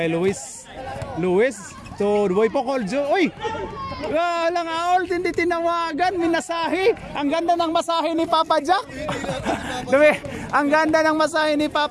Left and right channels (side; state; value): both; identical; correlation 1.00